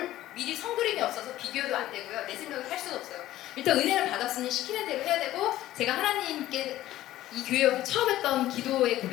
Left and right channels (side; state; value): right; quieter; 14.5 dB